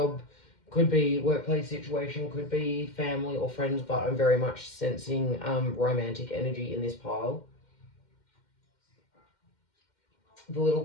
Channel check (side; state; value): right; late; 2.1 ms